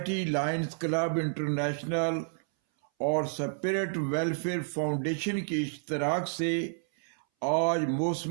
lines club, international اور سپرٹ ویلفیئر فاؤنڈیشن کے اشتراک سے آج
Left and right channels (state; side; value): silent; left; 58 dB below the other